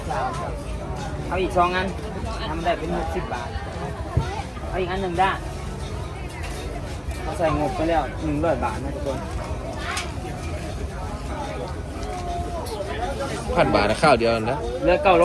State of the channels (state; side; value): identical; both; correlation 1.00